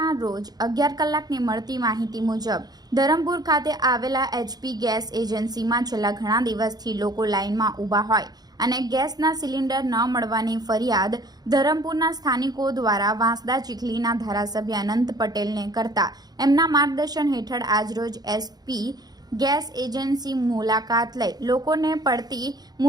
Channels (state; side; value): late; left; 0.19 ms